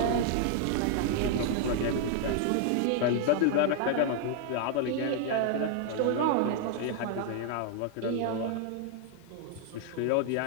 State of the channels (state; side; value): different; both; correlation 0.00